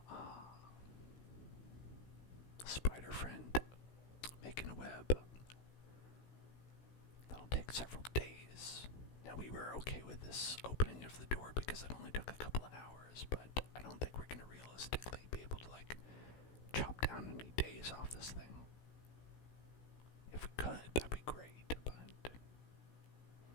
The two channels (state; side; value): late; right; 16 ms